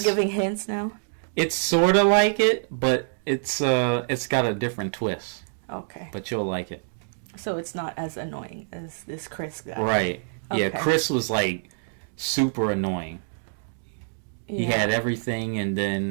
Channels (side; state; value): left; silent; digital silence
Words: giving hints now? It's sort of like it, but it's got a different twist. Okay. But you'll like it. So it's not as annoying as this Chris guy. Right. Yeah, Okay. Chris was like super annoying. He had everything, and